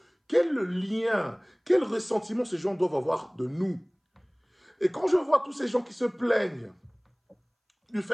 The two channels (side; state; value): both; identical; correlation 1.00